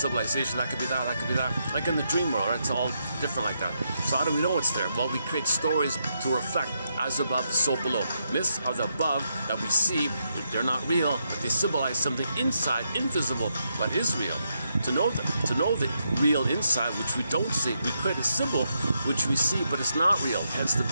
that could be that, that could be that. Like in the dream world, right? It's all different like that. So how do we know it's there? Well, we create stories to reflect as above, so below. Myths are the above that we see. They're not real, but they symbolize something inside, invisible, but is real. To know the real inside, which we don't see, we create a symbol which we see, but it's not real, hence the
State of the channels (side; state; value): both; inverted; correlation -0.81